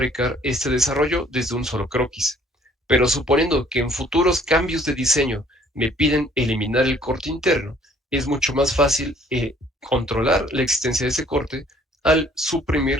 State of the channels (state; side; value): normal; both; correlation 0.58